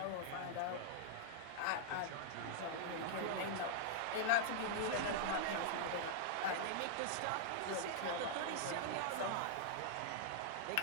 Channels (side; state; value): both; different; correlation -0.01